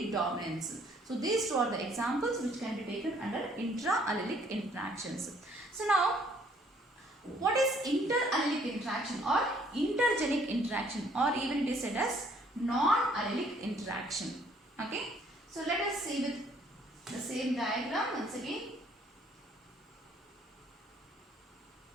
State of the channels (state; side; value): normal; both; correlation 0.62